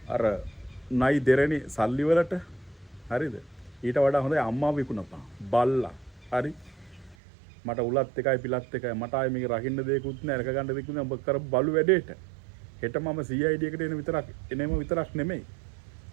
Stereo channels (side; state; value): left; drops out; at 7.2 s